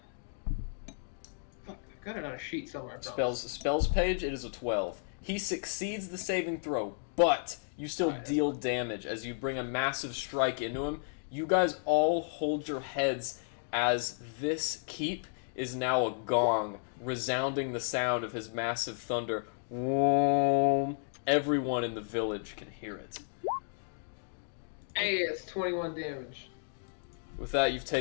fuck, I've got it on a sheet somewhere. I promise. Spells page, it is a 12. He succeeds the saving throw, but you still deal damage as you bring a massive strike into him. You guys all hold your heads as this keep is now a gong, resounding the sound of his massive thunder. Everyone in the village can hear it. Hey, it's 21 damage. With that, you've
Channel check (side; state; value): right; silent; digital silence